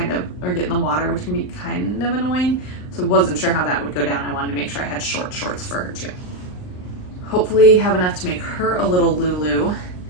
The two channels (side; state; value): right; late; 39 ms